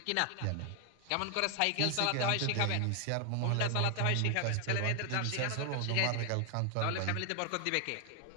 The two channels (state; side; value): different; both; correlation 0.00